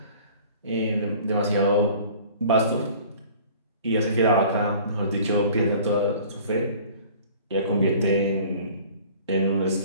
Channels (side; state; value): both; inverted; correlation -0.48